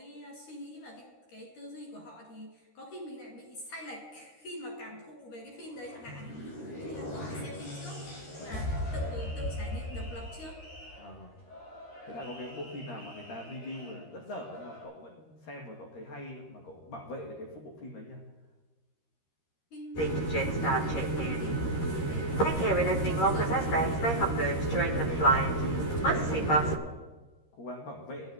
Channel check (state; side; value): late; right; 13 ms